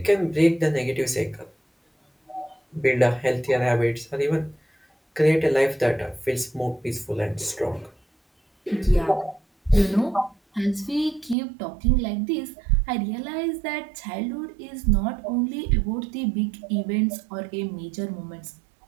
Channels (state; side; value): drops out; left; at 11.4 s